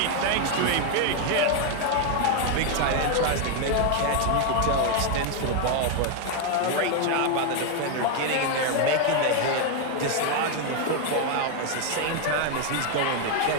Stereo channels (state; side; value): different; both; correlation 0.01